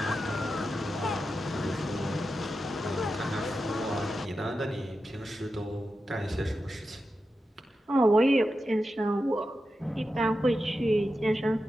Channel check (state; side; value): normal; both; correlation 0.90